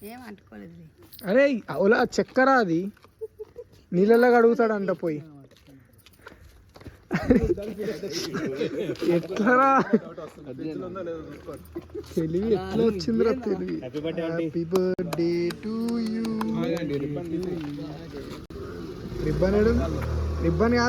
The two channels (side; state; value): both; identical; correlation 1.00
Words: అరే ఓలా చక్కెర అది నీళ్ళలాగా అడుగుతాడంట పోయి. ఎట్లరా తెలివి ఎట్లా వచ్చిందిరా తెలివి. Happy birthday to you. Ribbon ribbon